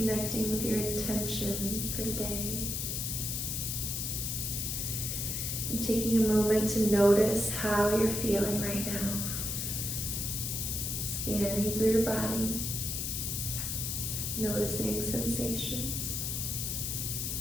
with your intention for today. And taking a moment to notice how you're feeling right now. Scanning through your body, noticing sensations.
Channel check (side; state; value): left; noise; hiss, 2 dB below the sound